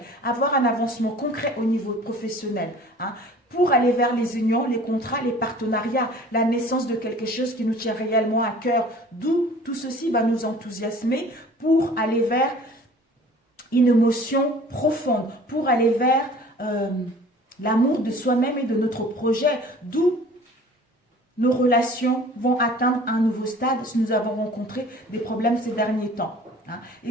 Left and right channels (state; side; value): normal; both; correlation 0.47